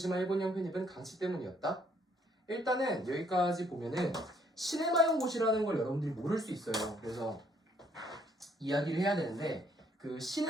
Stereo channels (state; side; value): normal; both; correlation 0.67